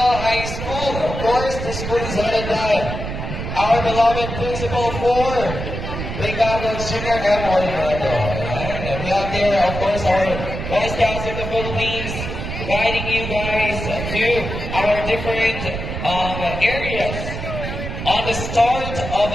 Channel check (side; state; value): right; noise; rumble, 6 dB below the sound